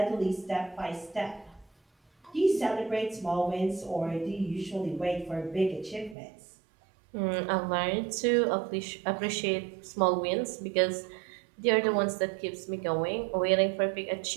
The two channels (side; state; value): left; drops out; at 6.2 s